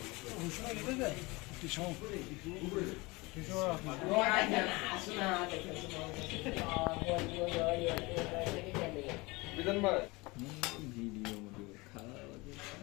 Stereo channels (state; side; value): quieter; right; 24.1 dB